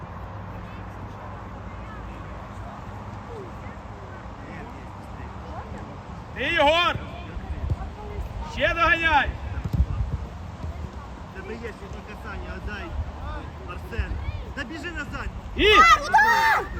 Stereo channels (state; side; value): identical; both; correlation 1.00